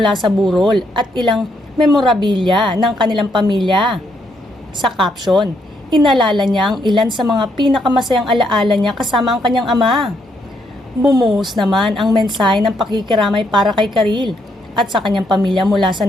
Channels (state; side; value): normal; both; correlation 0.75